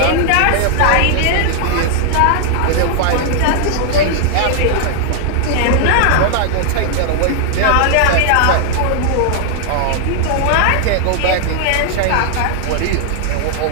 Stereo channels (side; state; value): both; different; correlation 0.00